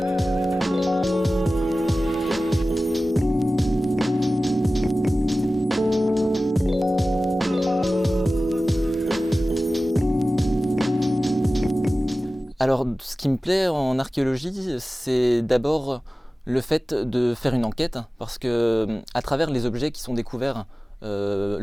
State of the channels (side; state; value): both; normal; correlation 0.96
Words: Alors ce qui me plaît en archéologie, c'est d'abord le fait de faire une enquête, parce que à travers les objets qui sont découverts